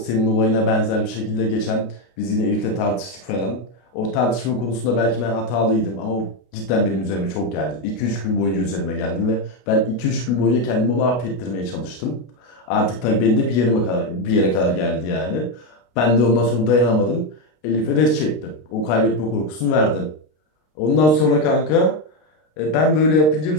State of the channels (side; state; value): right; late; 33 ms